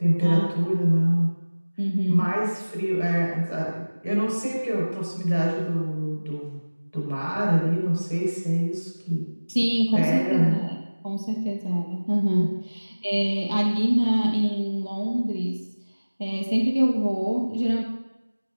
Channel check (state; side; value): inverted; both; correlation -1.00